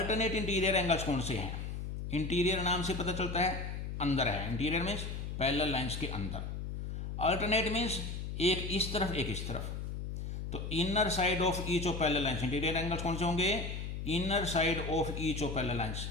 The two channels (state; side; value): noise; left; hum, 5 dB below the sound